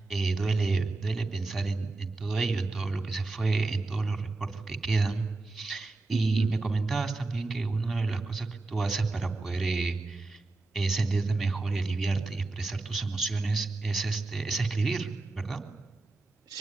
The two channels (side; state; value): left; quieter; 3.3 dB